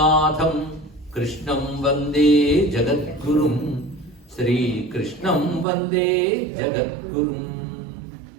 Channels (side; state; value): left; drops out; at 5.7 s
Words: कृष्णं वन्दे जगद्गुरुं श्रीकृष्णं वन्दे जगद्गुरुम्।